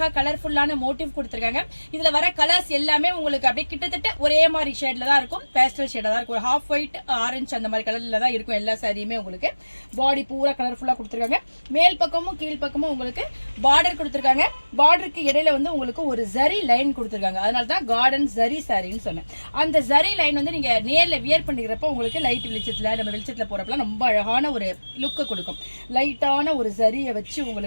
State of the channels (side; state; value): both; inverted; correlation -1.00